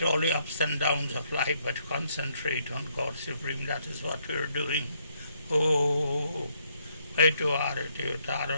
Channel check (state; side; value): inverted; both; correlation -0.72